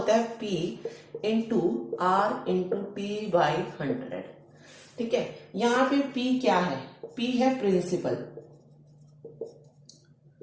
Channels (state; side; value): identical; both; correlation 1.00